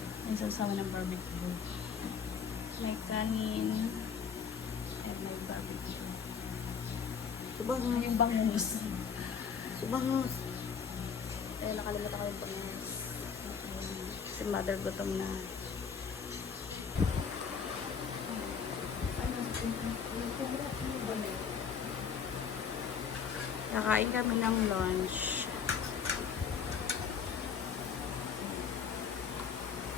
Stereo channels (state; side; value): quieter; right; 6.6 dB